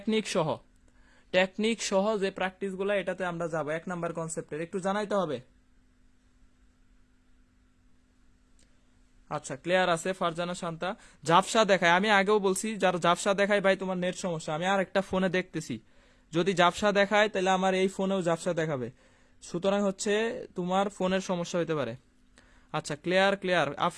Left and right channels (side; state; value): both; identical; correlation 1.00